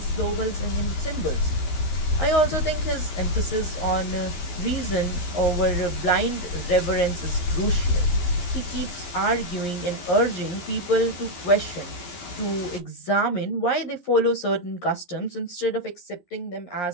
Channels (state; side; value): late; right; 12 ms